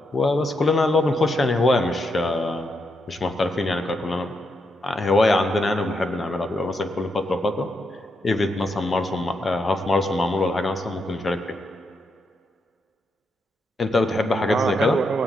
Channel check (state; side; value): normal; both; correlation 0.81